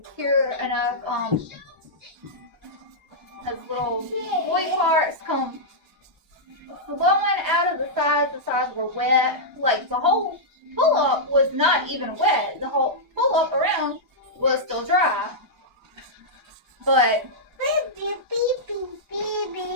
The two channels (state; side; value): normal; both; correlation -0.10